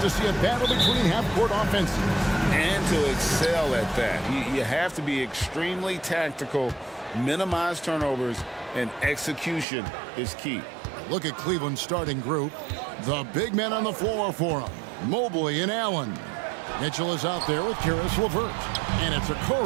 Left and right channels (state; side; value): drops out; left; at 9.7 s